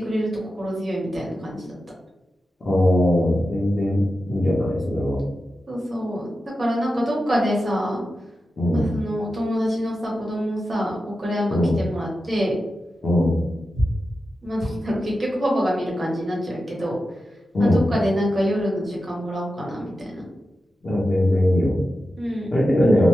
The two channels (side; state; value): both; normal; correlation 0.91